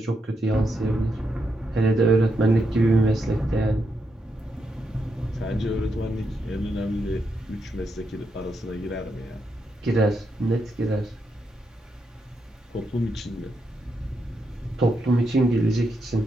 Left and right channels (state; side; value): normal; both; correlation 0.82